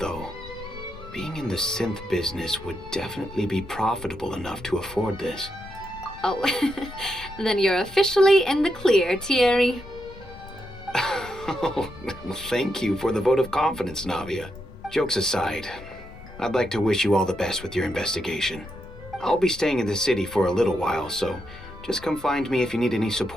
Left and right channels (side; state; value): both; normal; correlation 0.83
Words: being in the synth business would definitely be profitable enough to afford this. Oh, then you're officially in the clear, Thierry. Oh, well, thank you for the vote of confidence, Navia. Jokes aside, I'd like to wish you all the best with your investigation. I'll be staying in the city for a little while, so just come find me if you need any